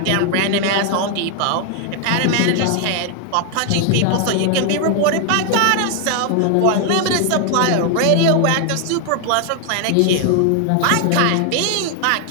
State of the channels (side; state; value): both; different; correlation 0.00